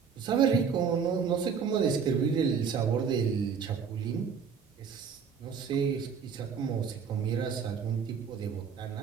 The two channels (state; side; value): quieter; left; 6.4 dB